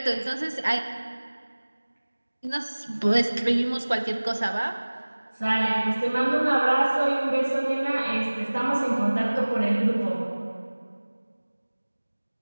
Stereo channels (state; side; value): inverted; both; correlation -1.00